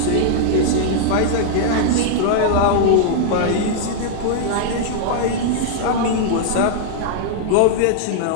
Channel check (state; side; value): different; both; correlation -0.02